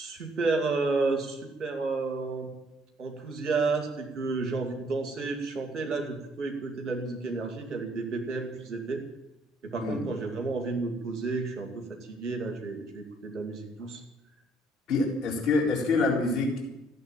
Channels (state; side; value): normal; both; correlation 0.63